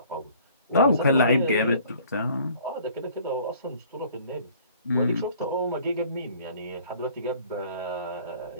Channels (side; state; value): both; inverted; correlation -0.54